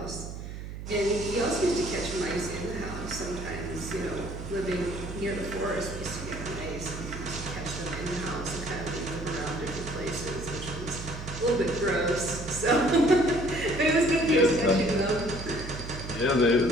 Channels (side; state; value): right; noise; hum, 9 dB below the sound